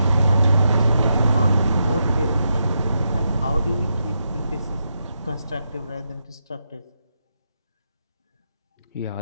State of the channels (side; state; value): both; inverted; correlation -0.84